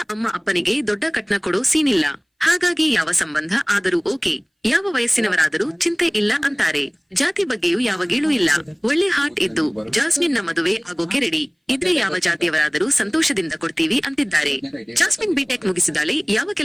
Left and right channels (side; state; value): both; identical; correlation 1.00